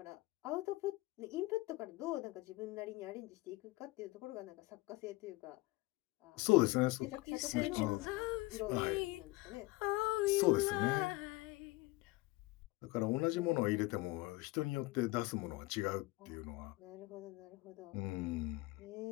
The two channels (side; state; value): right; quieter; 21.3 dB